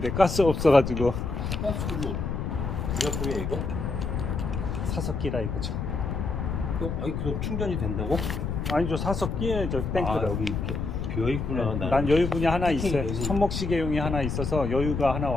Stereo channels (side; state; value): left; noise; rumble, 3 dB below the sound